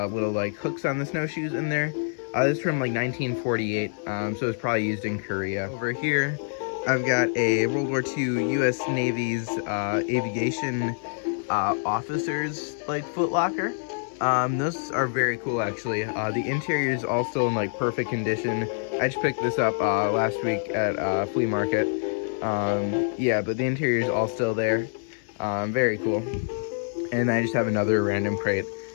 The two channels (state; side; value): silent; right; 61 dB below the other